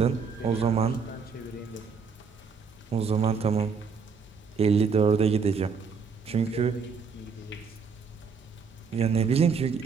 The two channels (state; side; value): quieter; left; 5.6 dB